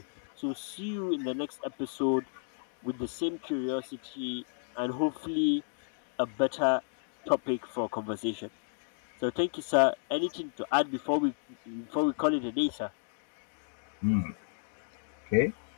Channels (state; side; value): silent; right; digital silence